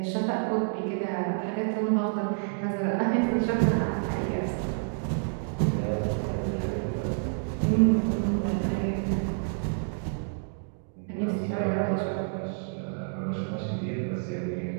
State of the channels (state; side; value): silent; left; digital silence